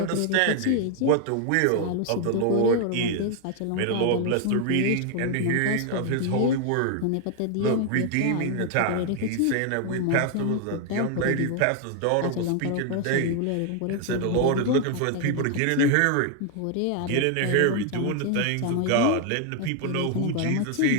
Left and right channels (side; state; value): both; different; correlation 0.00